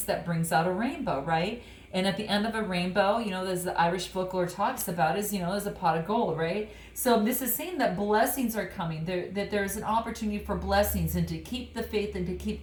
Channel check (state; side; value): identical; both; correlation 1.00